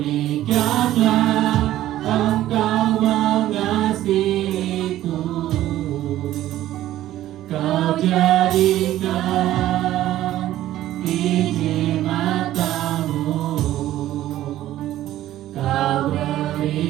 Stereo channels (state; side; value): quieter; left; 13.8 dB